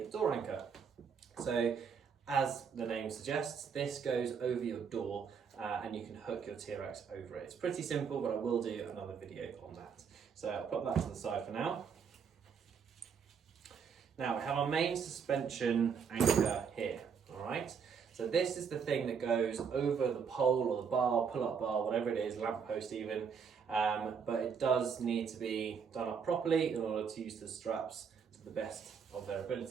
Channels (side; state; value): left; quieter; 6.5 dB